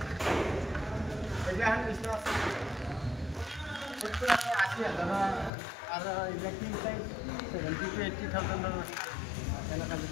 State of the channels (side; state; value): right; drops out; at 5.5 s